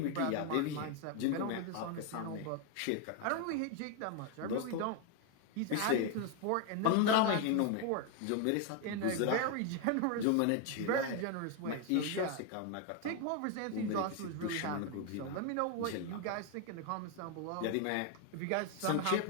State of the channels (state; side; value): different; both; correlation 0.01